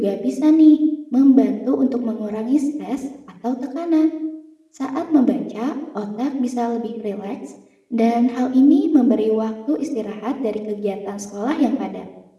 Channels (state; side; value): identical; both; correlation 1.00